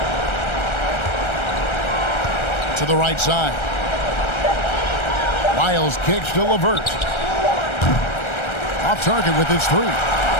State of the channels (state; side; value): late; right; 1.3 ms